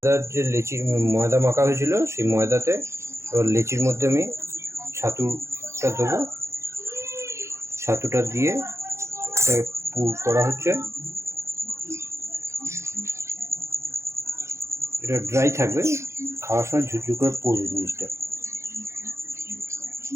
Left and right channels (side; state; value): left; late; 0.14 ms